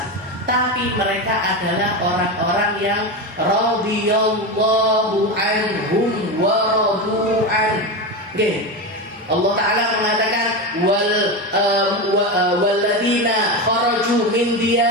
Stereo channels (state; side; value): normal; both; correlation 0.18